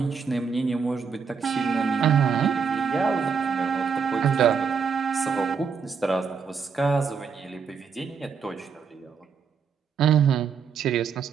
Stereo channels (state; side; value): quieter; left; 6.0 dB